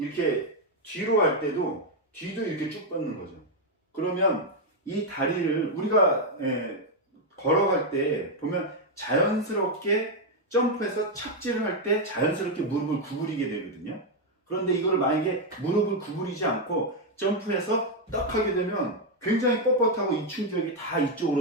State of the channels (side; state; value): both; normal; correlation 0.02